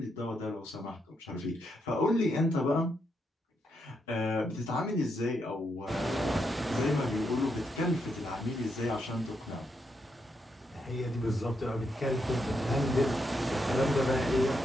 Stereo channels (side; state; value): both; normal; correlation 0.80